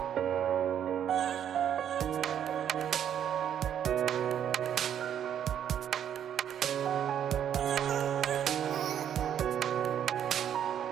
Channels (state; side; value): quieter; left; 9.5 dB